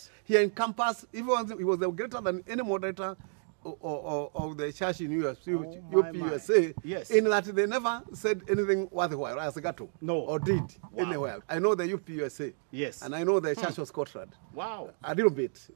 he encompassed, he was greater than any moderator of the church in USA, in that they never said anything worthwhile as Gato. No. Or did anywhere. I know the UPUSA. Yes. And I know the Church of Scotland. Wow. A little bit.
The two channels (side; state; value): left; silent; 57 dB below the other